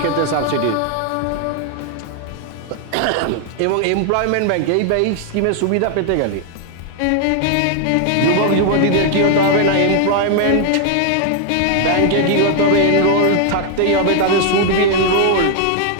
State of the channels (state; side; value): different; both; correlation 0.00